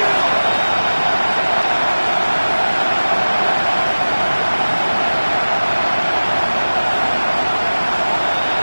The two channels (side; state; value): both; inverted; correlation -1.00